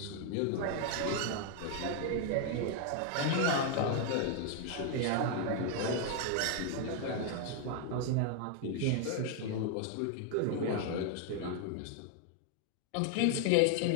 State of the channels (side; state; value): both; different; correlation 0.00